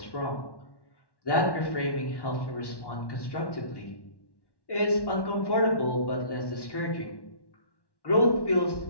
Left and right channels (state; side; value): late; right; 1.1 ms